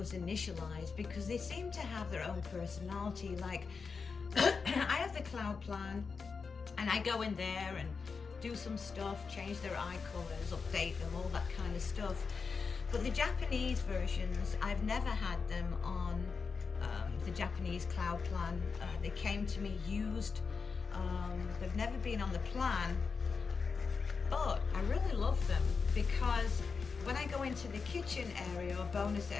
initialized because they seem to have their own personality. Like I have the cloud plan and I go in there and do some stuff, change their eye colors, update them, all that kind of stuff. But the Japanese versions, I've never had them on the Japanese cloud plan. They came to me used. They've never been on the plan, but I really love them because when I go into the kitchen area or bonus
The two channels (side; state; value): right; quieter; 5.1 dB